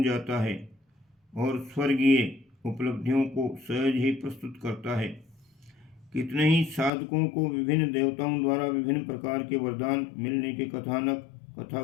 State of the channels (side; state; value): right; drops out; at 6.9 s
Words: जाता है और स्वर्गीय उपलब्धियों को सहज ही प्रस्तुत करता है। कितने ही साधकों को विभिन्न देवताओं द्वारा विभिन्न प्रकार के वरदान मिलने के कथानक कथा